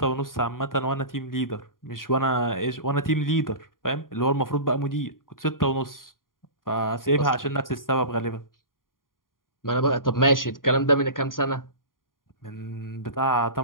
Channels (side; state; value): right; late; 0.90 ms